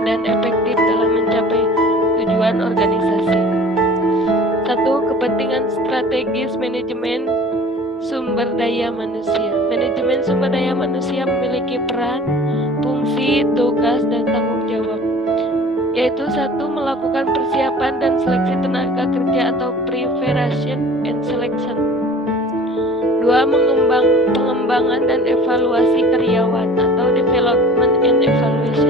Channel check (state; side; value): normal; both; correlation 0.45